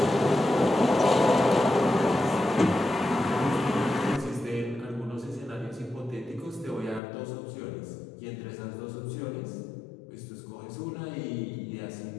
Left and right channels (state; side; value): drops out; right; at 7.0 s